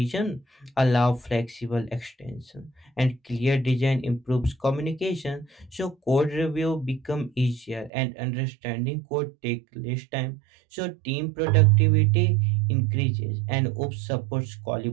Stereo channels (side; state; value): left; drops out; at 7.9 s